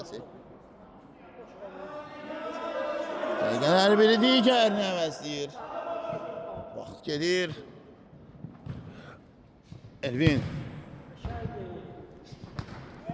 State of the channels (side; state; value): both; identical; correlation 1.00